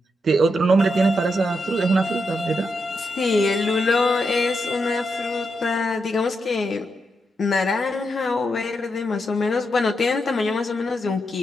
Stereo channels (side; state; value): both; normal; correlation 0.84